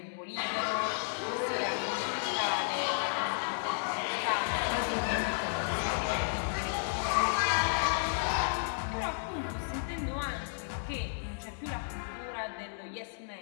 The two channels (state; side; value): silent; right; digital silence